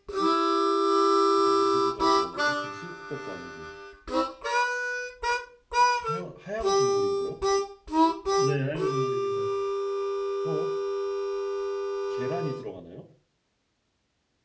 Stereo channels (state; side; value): identical; both; correlation 1.00